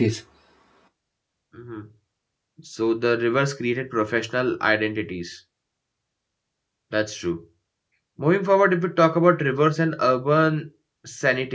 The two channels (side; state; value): both; identical; correlation 1.00